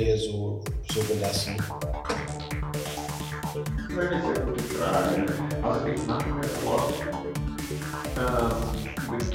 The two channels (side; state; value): both; identical; correlation 1.00